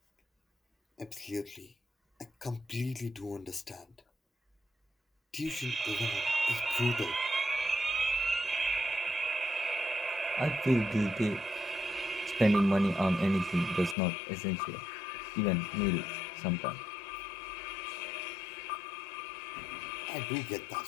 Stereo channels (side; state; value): right; drops out; at 14.0 s